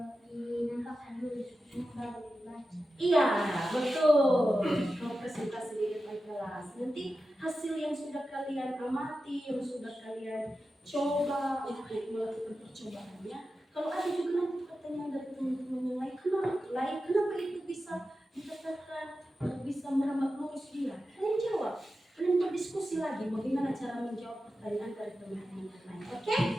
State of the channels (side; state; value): both; normal; correlation 0.92